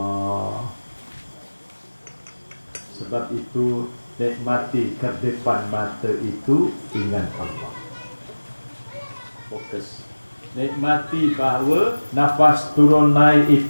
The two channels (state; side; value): inverted; both; correlation -1.00